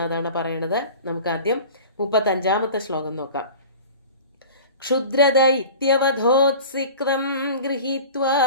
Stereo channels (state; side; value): inverted; both; correlation -0.40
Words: അതാണ് പറയണത്. നമുക്ക് ആദ്യം 35ാമത്തെ ശ്ലോകം നോക്കാം. ക്ഷുദ്രദൈത്യവധോത്സിക്തം ഗൃഹീത്വാ